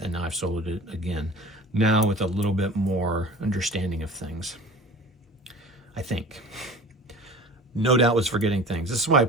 and now I've soloed it again. Now with a little bit more understanding of things, I think. No doubt was forgetting things. This is why I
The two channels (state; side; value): normal; both; correlation 0.40